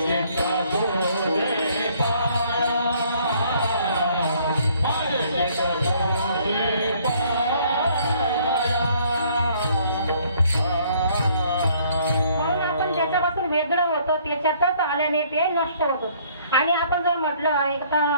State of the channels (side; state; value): both; inverted; correlation -0.62